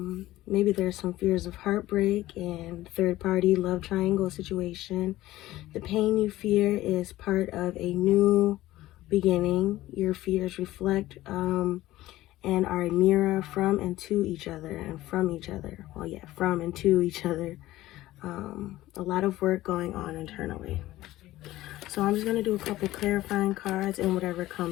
maybe there's some fears of heartbreak and third party love triangle situation. The pain you fear is part of a new beginning. Your fears reflect and are a mirror from and to each other and from each other. Well, yeah, from and to each other. A lot of work going on internally. So I'm just going to do a couple clarifying cards and whatever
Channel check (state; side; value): quieter; right; 16.1 dB